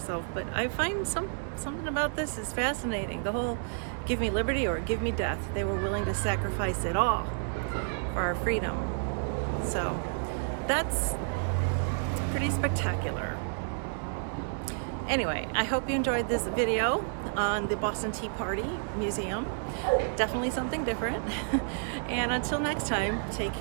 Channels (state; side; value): silent; left; digital silence